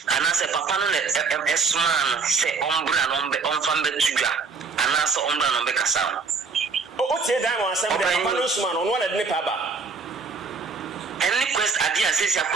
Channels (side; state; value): left; quieter; 4.7 dB